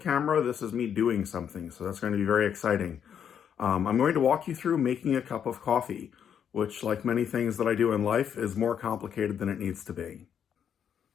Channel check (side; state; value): right; quieter; 8.4 dB